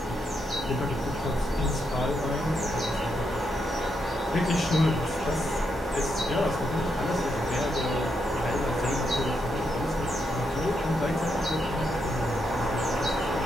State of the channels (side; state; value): both; normal; correlation 0.81